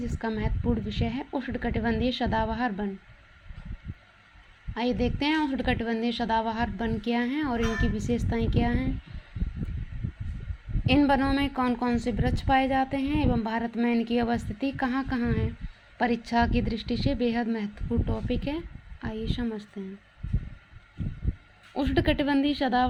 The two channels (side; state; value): both; identical; correlation 1.00